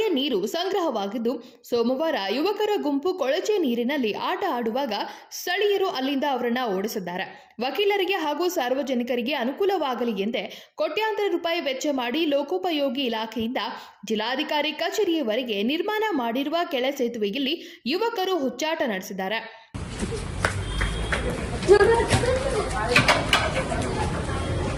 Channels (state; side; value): identical; both; correlation 1.00